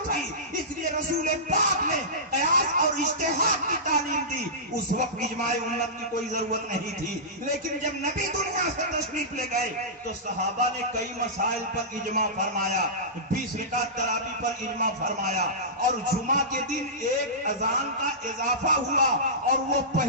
تھی. اس لیے رسول پاک نے قیاس اور اجتہاد کی تعلیم دی. اس وقت اجماع امت کی کوئی ضرورت نہیں تھی. لیکن جب نبی دنیا سے تشریف لے گئے تو صحابہ نے کئی مسائل پر اجماع فرمایا، 20 رکعت تراویح پر اجماع فرمایا، اور جمعہ کے دن ایک اذان کا اضافہ ہوا اور وہ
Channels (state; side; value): normal; both; correlation -0.18